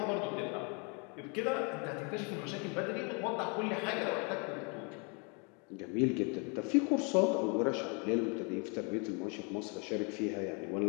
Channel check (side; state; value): right; quieter; 34.1 dB